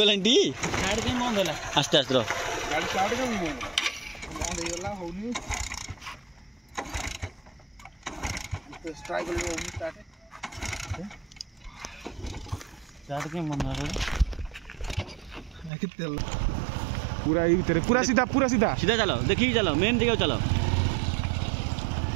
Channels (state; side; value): drops out; left; at 15.7 s